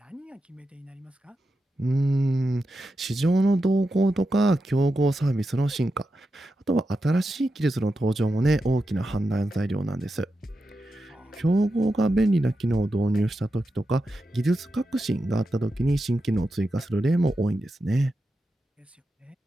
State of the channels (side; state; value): both; normal; correlation 0.89